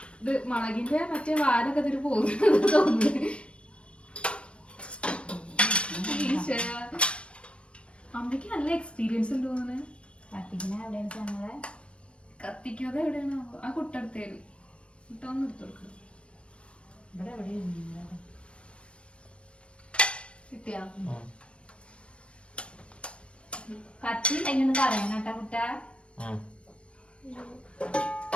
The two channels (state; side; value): late; right; 0.059 ms